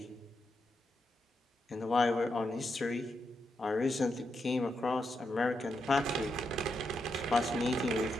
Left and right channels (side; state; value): both; normal; correlation 0.83